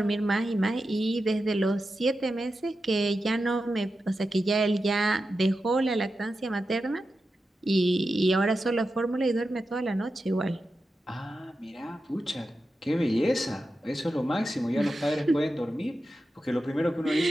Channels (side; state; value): both; normal; correlation 0.91